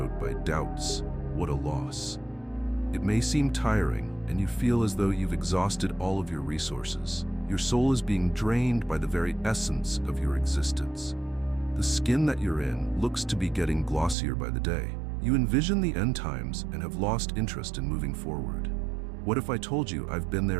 by doubts. What a loss. It may seem tiring, and you feel as though you've exhausted all of your resources. Your soul is being drained by the very essence of your existence. The skin that you're in looks to be getting glossier by the day. You envision the end times and have lost interest in moving forward. What if I told you I've been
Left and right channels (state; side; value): drops out; left; at 14.2 s